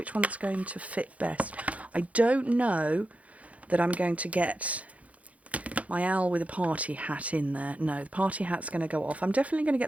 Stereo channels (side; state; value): left; late; 0.067 ms